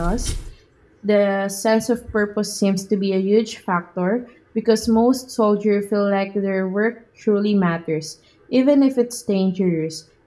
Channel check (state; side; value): identical; both; correlation 1.00